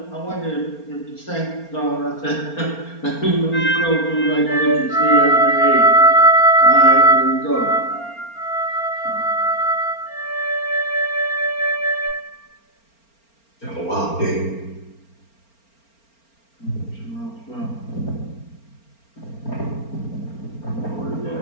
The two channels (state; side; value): late; right; 4.4 ms